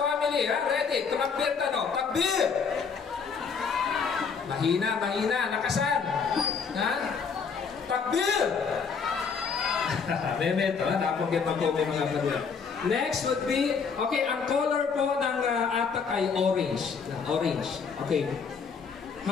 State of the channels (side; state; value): right; quieter; 5.8 dB